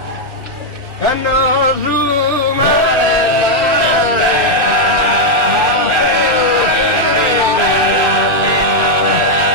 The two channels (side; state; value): left; late; 2.4 ms